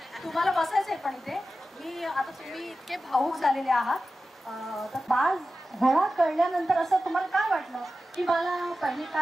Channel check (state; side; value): normal; both; correlation 0.93